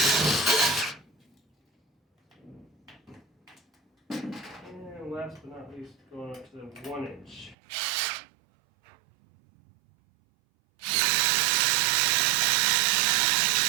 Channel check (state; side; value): drops out; left; at 7.6 s